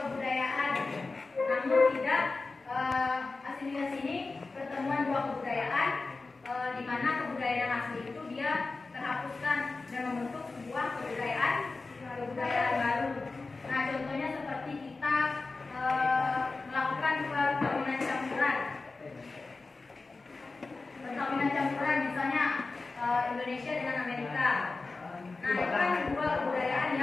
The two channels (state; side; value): quieter; right; 3.7 dB